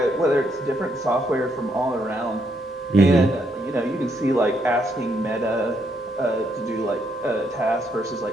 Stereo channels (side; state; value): both; normal; correlation 0.75